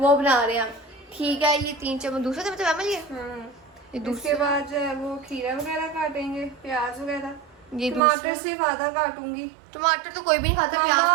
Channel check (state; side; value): drops out; left; at 8.0 s